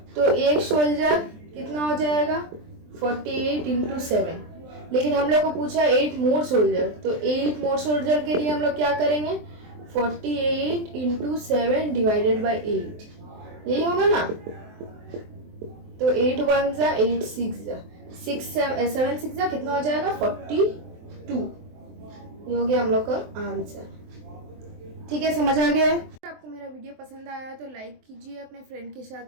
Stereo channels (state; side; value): late; left; 23 ms